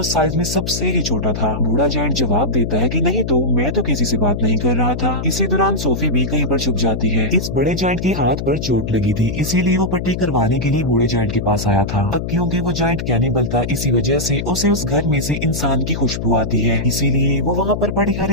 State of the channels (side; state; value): left; noise; hum, 4 dB below the sound